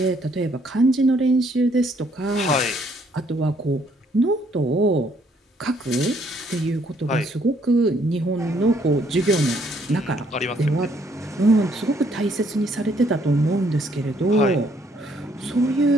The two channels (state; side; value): normal; both; correlation 0.67